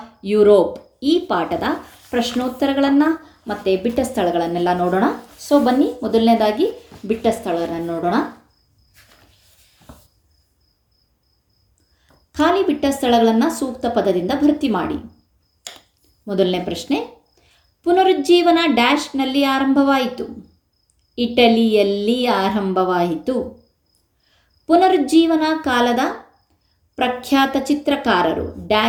ಯುರೋಪ್ ಈ ಪಾಠದ ಪ್ರಶ್ನೋತ್ತರಗಳನ್ನು ಮತ್ತು ಬಿಟ್ಟ ಸ್ಥಳಗಳನ್ನೆಲ್ಲ ನೋಡೋಣ. ಸೊ ಬನ್ನಿ, ಮೊದಲನೇದಾಗಿ ಬಿಟ್ಟ ಸ್ಥಳಗಳನ್ನು ನೋಡೋಣ. ಖಾಲಿ ಬಿಟ್ಟ ಸ್ಥಳಗಳನ್ನು ಸೂಕ್ತ ಪದದಿಂದ ಭರ್ತಿ ಮಾಡಿ. ಮೊದಲನೇ ಪ್ರಶ್ನೆ, ಪುನರುಜ್ಜೀವನ ಡ್ಯಾಶ್ನಲ್ಲಿ ಆರಂಭವಾಯಿತು. ಇಟಲಿಯಲ್ಲಿ ಆರಂಭವಾಯಿತು. ಪುನರುಜ್ಜೀವನ ಕಾಲದ ಪ್ರಖ್ಯಾತ ಚಿತ್ರಕಾರರು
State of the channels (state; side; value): identical; both; correlation 1.00